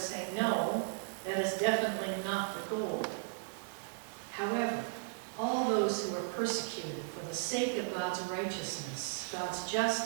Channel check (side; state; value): left; silent; digital silence